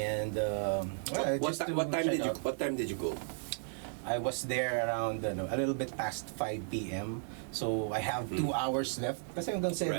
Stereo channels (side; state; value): left; silent; digital silence